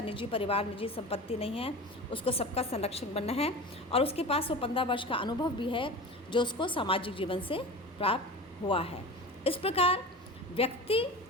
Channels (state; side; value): normal; both; correlation 0.32